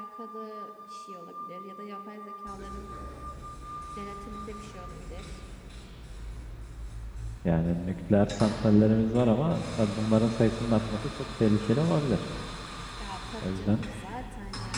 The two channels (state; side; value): identical; both; correlation 1.00